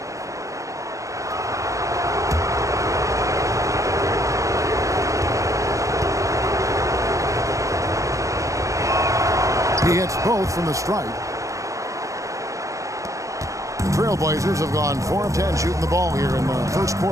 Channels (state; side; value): late; left; 0.16 ms